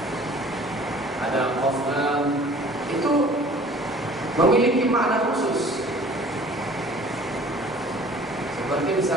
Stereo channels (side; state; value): both; normal; correlation 0.49